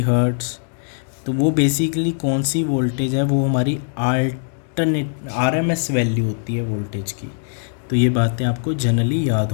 हर्ट्ज़। तो वो बेसिकली कौन सी वोल्टेज है, वो हमारी अल्टरनेट आरएमएस वैल्यू होती है वोल्टेज की। तो ये बातें आपको जनरली याद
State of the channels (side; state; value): right; silent; digital silence